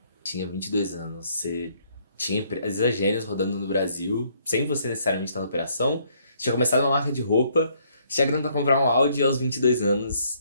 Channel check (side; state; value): both; inverted; correlation -0.68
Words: Tinha 22 anos. Você tinha empresas Gênios rodando no Brasil, sem você necessariamente estar na operação. Você tinha começado uma marca de roupa. Você tinha grana para comprar um Audi aos 22 anos